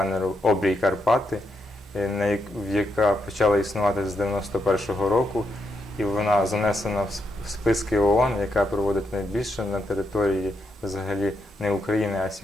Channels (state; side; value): normal; both; correlation 0.82